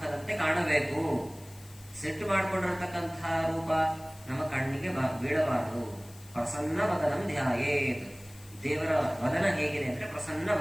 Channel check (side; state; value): left; noise; hiss, 22 dB below the sound